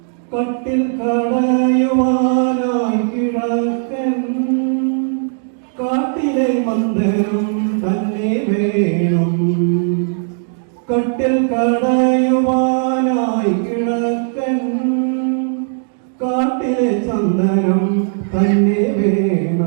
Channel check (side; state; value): left; silent; digital silence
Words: കട്ടിൽ കടയുവാനായി കിഴക്കൻ കാട്ടിലെ മന്ദിരം തന്നെ വേണം. കട്ടിൽ കടയുവാനായി കിഴക്കൻ കാട്ടിലെ ചന്ദനം തന്നെ